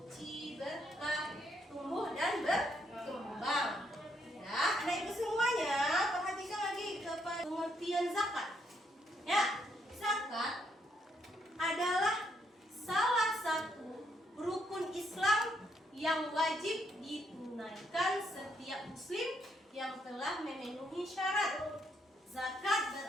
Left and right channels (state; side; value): normal; both; correlation 0.74